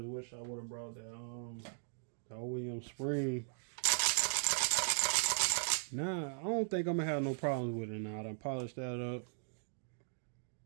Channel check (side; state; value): left; silent; digital silence